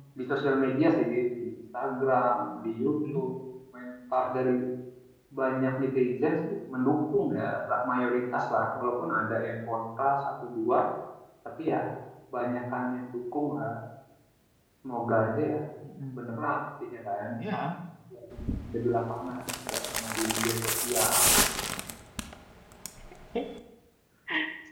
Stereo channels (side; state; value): both; identical; correlation 1.00